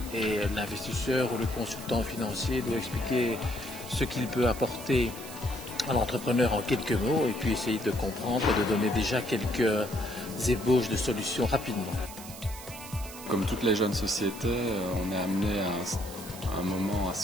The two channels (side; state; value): right; noise; hiss, 14 dB below the sound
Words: et l'investisseur ou le consultant financier doit expliquer ce qu'il peut apporter à l'entrepreneur en quelques mots et puis essayer de comprendre et de donner déjà quelques ébauches de solutions rapidement. Comme toutes les jeunes sociétés, on est amené à un moment à